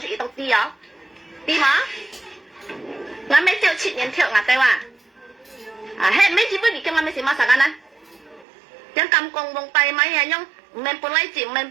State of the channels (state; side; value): drops out; left; at 8.5 s